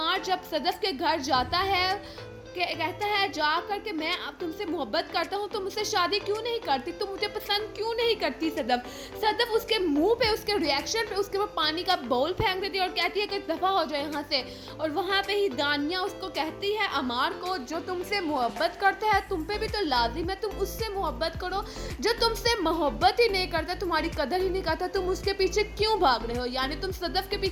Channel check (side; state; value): both; identical; correlation 1.00